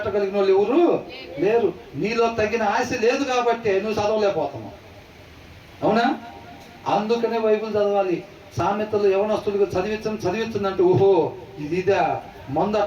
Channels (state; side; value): identical; both; correlation 1.00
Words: వాళ్ళు ఎవరు లేరు. నీలో తగిన ఆశ లేదు కాబట్టి నువ్వు చదవలేకపోతున్నావు. అవునా? అందుకనే బైబిల్ చదవాలి. సామెతలు యవనస్తులుగా చదివించంటే ఓహో ఇదిదా మందు